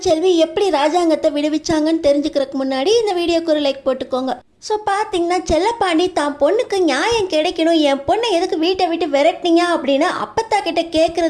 எப்படி ராஜாங்கத்தை விடுவிச்சாங்கன்னு தெரிஞ்சுக்கிறதுக்கு முன்னாடி இந்த வீடியோக்கு ஒரு லைக் போட்டுக்கோங்க. ஸோ பார்த்தீங்கன்னா செல்லப்பாண்டி தான் பொண்ணுக்கு நியாயம் கிடைக்கணும், என் பொண்ணை எதுக்கு வீட்டை விட்டு விரட்டினீங்க அப்படின்னு அப்பத்தா கிட்ட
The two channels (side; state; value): both; identical; correlation 1.00